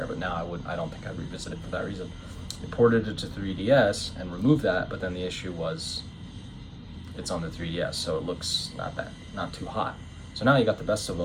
but now I don't think I'd revisit it for that reason. I ported it to 3DS and removed that, but then the issue was it's on the 3DS, so it looks not too hot. So now you got the best of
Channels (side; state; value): both; identical; correlation 1.00